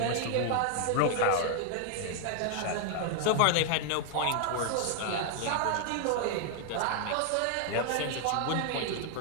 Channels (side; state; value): both; different; correlation 0.00